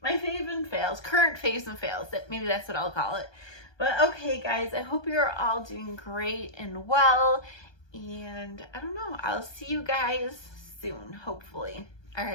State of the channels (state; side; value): late; right; 1.2 ms